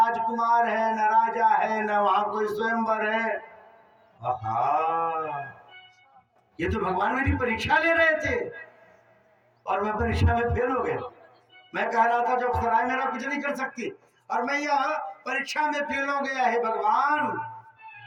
है, न राजा है, न वहां कोई स्वयंवर है। आहा, ये तो भगवान मेरी परीक्षा ले रहे थे और मैं परीक्षा में फेल हो गया। मैं कह रहा था जब सराय मेरा कुछ नहीं कर सकती और मैं यह परीक्षा में फेल हो गया है। भगवान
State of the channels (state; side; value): identical; both; correlation 1.00